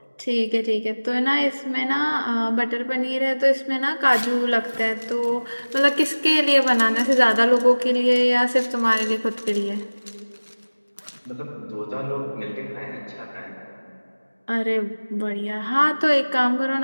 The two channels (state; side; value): inverted; both; correlation -1.00